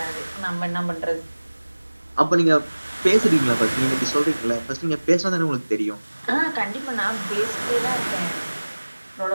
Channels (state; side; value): inverted; both; correlation -1.00